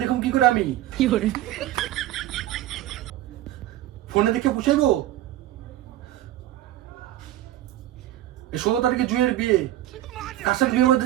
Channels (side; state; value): left; quieter; 13.7 dB